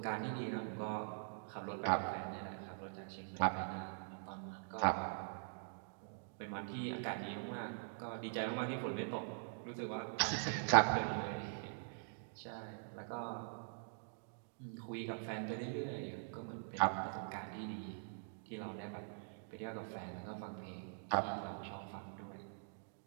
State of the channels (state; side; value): silent; left; digital silence